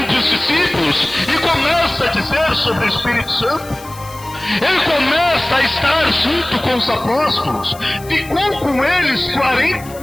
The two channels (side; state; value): left; noise; hiss, 19 dB below the sound